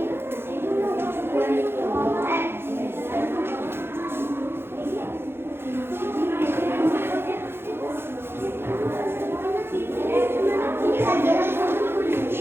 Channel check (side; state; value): left; late; 0.11 ms